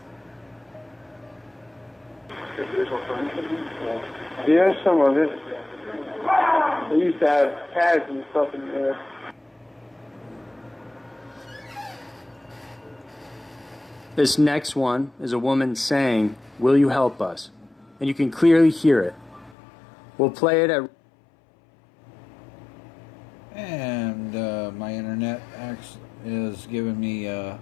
Yeah, some of it. They used to have pads and stuff in there. This next one is a woman saying, "Will you help us?" And you can clearly hear it. We'll play it at... And my internet is giving me a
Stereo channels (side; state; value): right; drops out; at 19.6 s